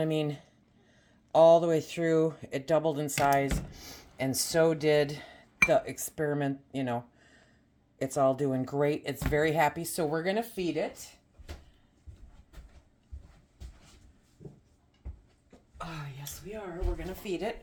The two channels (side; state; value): both; identical; correlation 1.00